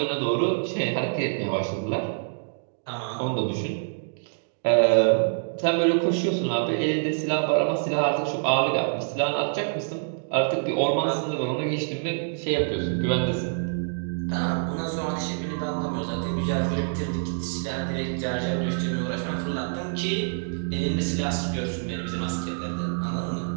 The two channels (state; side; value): silent; left; digital silence